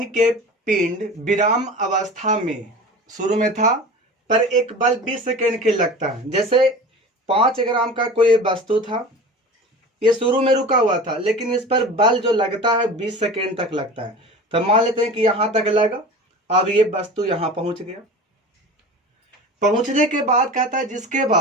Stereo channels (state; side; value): normal; both; correlation 0.35